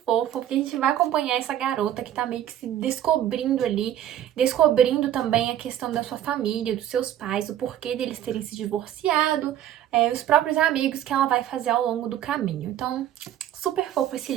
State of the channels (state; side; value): quieter; left; 11.4 dB